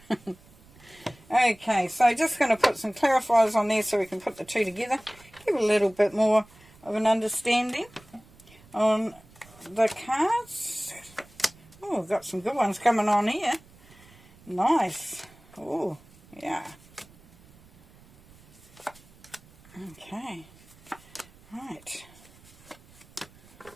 Okay, so just going to put some clarifiers on there so we can put the two together. Give a little bit more of an understanding on the cards. Oh, we've got some good ones coming on here. Nice. Oh, yeah. Okay. Right.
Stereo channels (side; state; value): right; noise; rumble, 25 dB below the sound